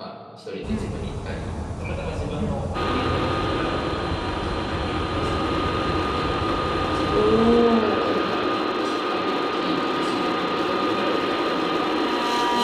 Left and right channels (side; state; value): both; identical; correlation 1.00